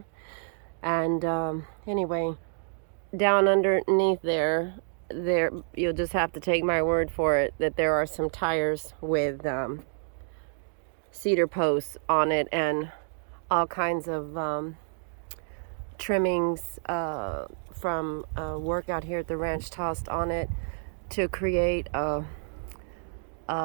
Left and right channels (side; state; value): left; silent; digital silence